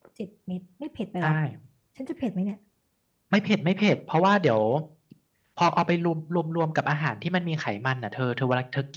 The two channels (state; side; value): identical; both; correlation 1.00